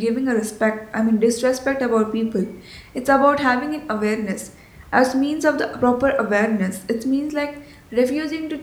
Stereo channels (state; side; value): identical; both; correlation 1.00